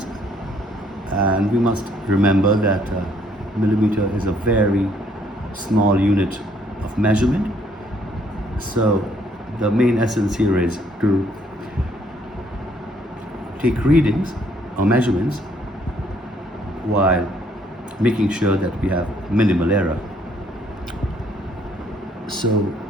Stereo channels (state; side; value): normal; both; correlation 0.66